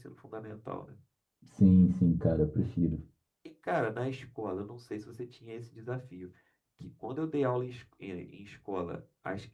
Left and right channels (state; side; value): identical; both; correlation 1.00